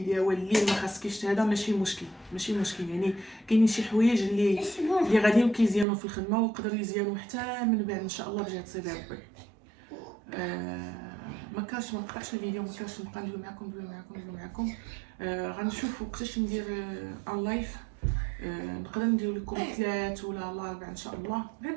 واللي ما خاصكيش هذا ماشي مشكل يعني كاينين شي حوايج اللي غاديين كيزيانوا في الخدمه ويقدروا يزيانوا حتى من بعد ان شاء الله بجهه سيدي ربي. ما نقطعش الفيديو، ما كانش نبقى ندوي معكم. غنشوف وقتاش ندير ان لايف، نقدر ندير لكم 3 ولا 4 ان شاء الله، غير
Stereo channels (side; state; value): left; drops out; at 5.9 s